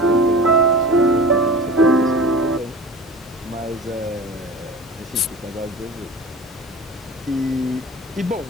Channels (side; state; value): both; normal; correlation 0.36